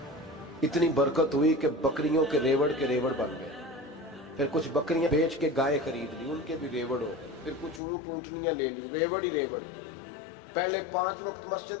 اتنی برکت ہوئی کہ بکریوں کے ریوڑ بن گئے۔ پھر کچھ بکریاں بیچ کے گائے خرید لی، ان کے بھی ریوڑ ہو گئے۔ پھر کچھ اونٹنیاں لے لی، ریوڑ ہی ریوڑ۔ پہلے 5 وقت مسجد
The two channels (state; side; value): drops out; right; at 7.8 s